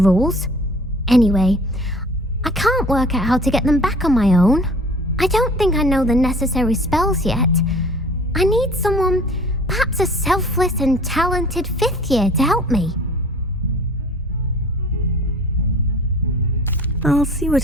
Anyway, I can't work out how to get them back on my own. I don't think I know the necessary spells yet. I need someone, perhaps a selfless and talented fifth year to help me. I'll see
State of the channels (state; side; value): normal; both; correlation 0.47